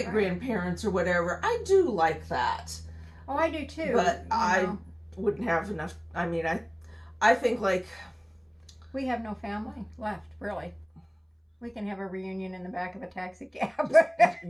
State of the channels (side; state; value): both; identical; correlation 1.00